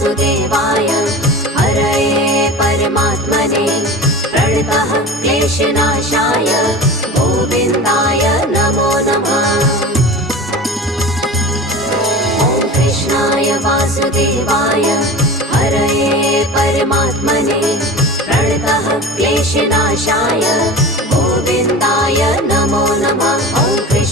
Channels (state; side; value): normal; both; correlation 0.33